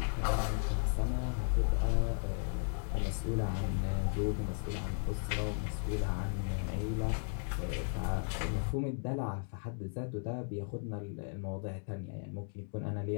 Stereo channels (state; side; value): silent; right; 54 dB below the other